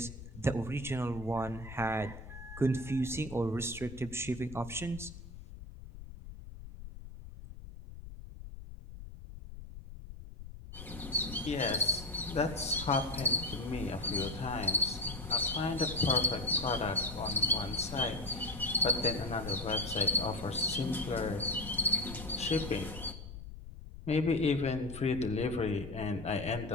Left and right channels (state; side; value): noise; left; rumble, 13 dB below the sound